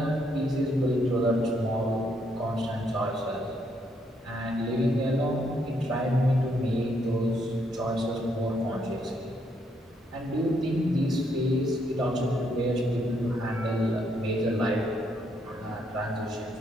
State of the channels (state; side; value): normal; both; correlation 0.74